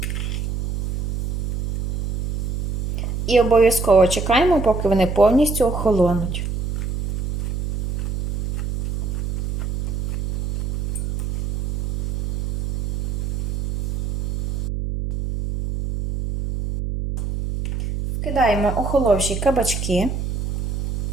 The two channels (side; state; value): right; noise; hum, 1 dB below the sound